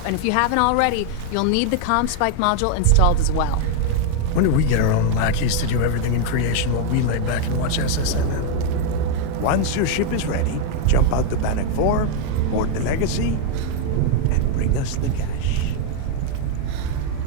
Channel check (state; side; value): different; both; correlation 0.01